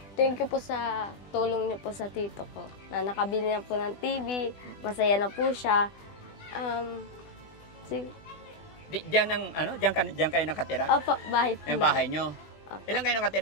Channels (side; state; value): right; late; 20 ms